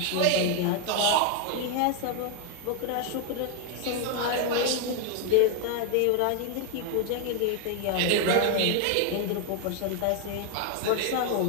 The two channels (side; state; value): both; different; correlation 0.00